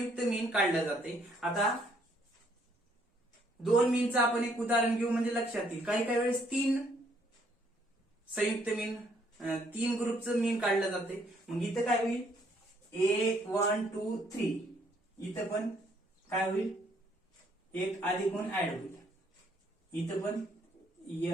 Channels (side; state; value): both; normal; correlation 0.67